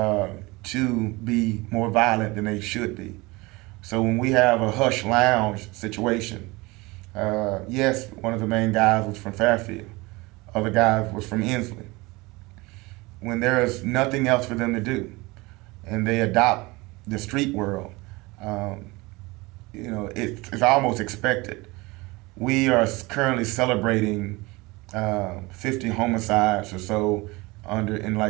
to be more violent than they should be. So when we have a hush lounge situation, yes, one of the main guys was from Fairfield, other guys was from Inslee. When there is nothing else for them to do, and they adopt the street world, it's almost expected. We are currently celebrating 50 homicides or so in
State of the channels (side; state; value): left; quieter; 23.3 dB